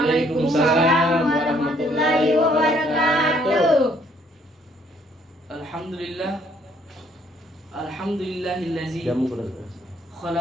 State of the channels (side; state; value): both; normal; correlation 0.65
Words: warahmatullahi wabarakatuh. Alhamdulillah. Alhamdulillahillazi